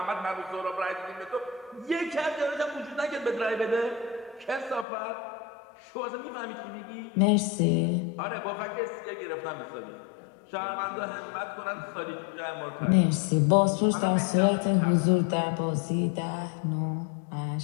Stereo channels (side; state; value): right; drops out; at 4.9 s